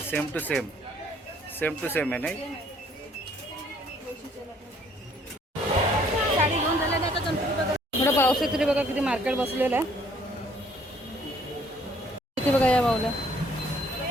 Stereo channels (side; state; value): both; normal; correlation 0.61